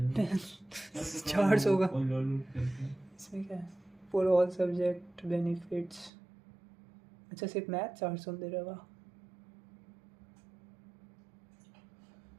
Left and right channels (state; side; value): drops out; left; at 6.1 s